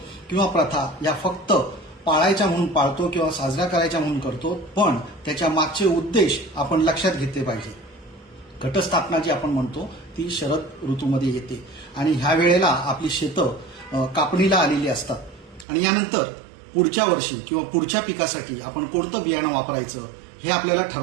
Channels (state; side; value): drops out; left; at 15.7 s